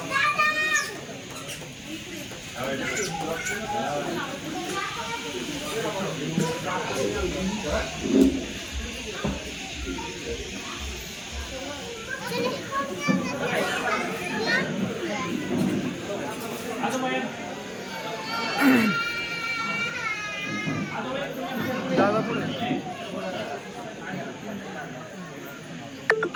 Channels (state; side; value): identical; both; correlation 1.00